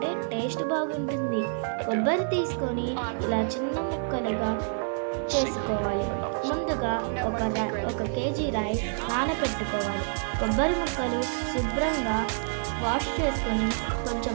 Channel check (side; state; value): left; silent; digital silence